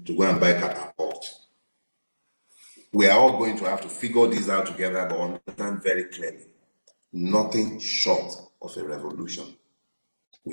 to go and buy catapult. We are all going to have to figure this out together, but understand very clearly, nothing short of a revolution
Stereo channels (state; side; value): inverted; both; correlation -1.00